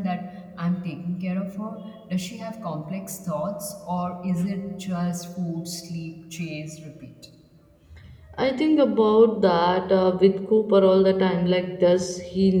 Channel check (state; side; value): identical; both; correlation 1.00